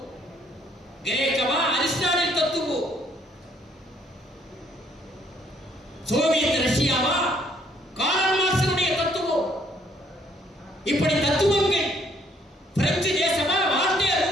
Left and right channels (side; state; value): both; normal; correlation 0.66